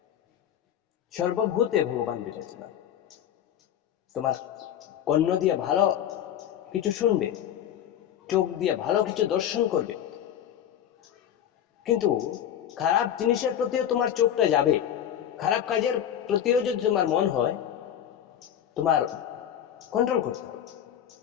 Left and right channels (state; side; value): quieter; right; 10.1 dB